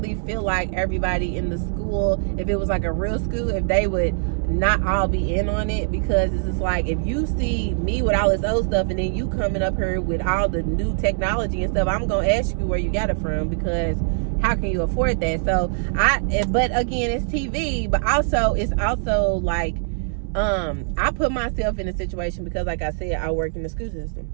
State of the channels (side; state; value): left; silent; 64 dB below the other